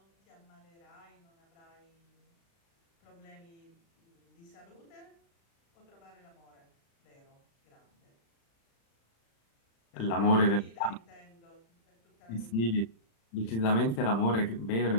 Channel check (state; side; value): late; right; 35 ms